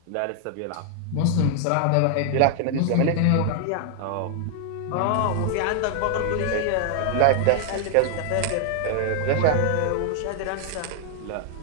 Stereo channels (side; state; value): both; different; correlation 0.00